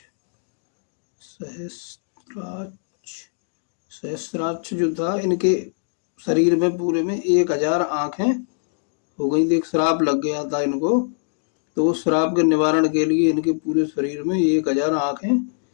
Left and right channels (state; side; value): silent; right; digital silence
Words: सहस्राक्ष। सहस्राक्ष जो था, इनके शरीर में पूरे में 1000 आंखें हो गई थी। एक श्राप लग गया था इनको, तो उस श्राप के निवारण के लिए इनके पूरे शरीर में 1000 आंखें